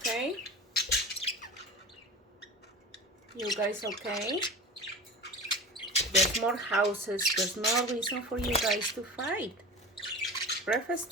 You guys okay? There's more houses. There's no reason for you guys to fight. Breakfast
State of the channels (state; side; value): normal; both; correlation 0.32